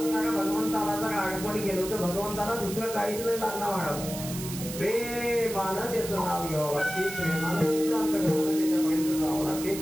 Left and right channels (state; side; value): noise; right; hiss, 9 dB below the sound